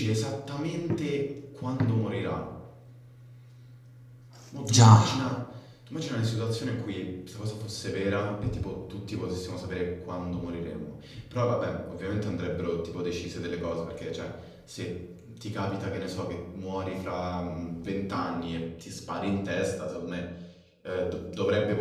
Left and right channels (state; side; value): identical; both; correlation 1.00